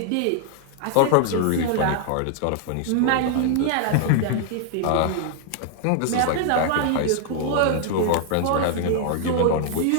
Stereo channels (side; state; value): both; different; correlation 0.00